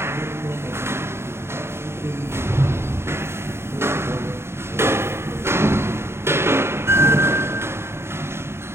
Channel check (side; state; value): left; late; 0.12 ms